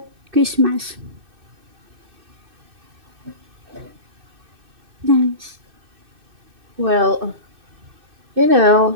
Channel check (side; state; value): left; late; 2.6 ms